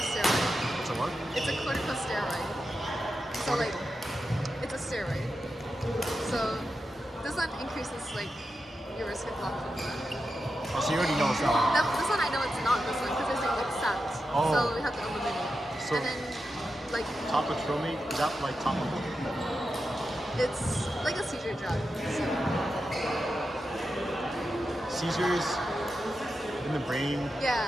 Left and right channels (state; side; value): normal; both; correlation 0.89